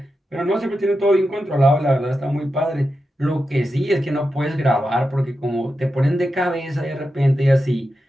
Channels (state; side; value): normal; both; correlation 0.89